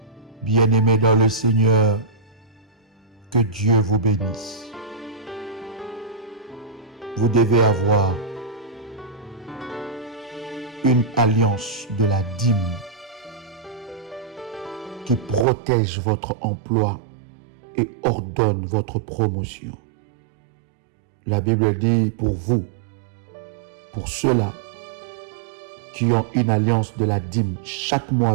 Bien-aimés dans le Seigneur, que Dieu vous bénisse. Vous devez avoir une alliance de la dîme qui protège votre emploi et ordonne votre promotion. La Bible dit pour vous, pour ceux-là qui ont une alliance de la dîme chaque mois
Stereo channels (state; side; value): drops out; left; at 15.5 s